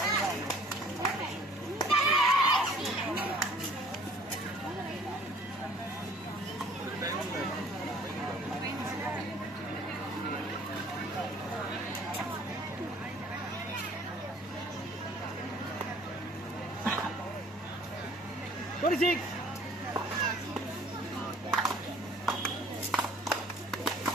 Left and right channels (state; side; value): normal; both; correlation 0.54